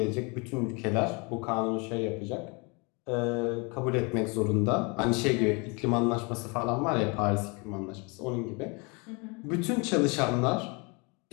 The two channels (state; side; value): quieter; right; 30.3 dB